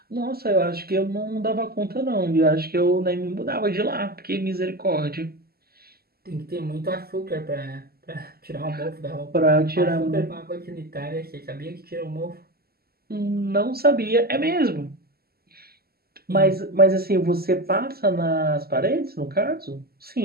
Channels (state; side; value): late; left; 0.45 ms